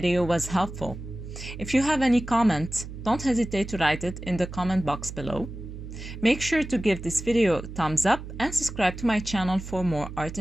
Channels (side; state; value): right; noise; hum, 11 dB below the sound